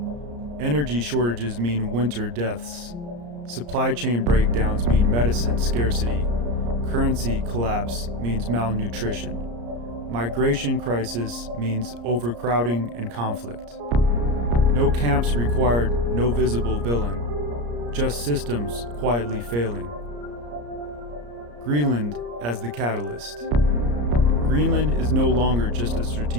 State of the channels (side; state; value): left; late; 34 ms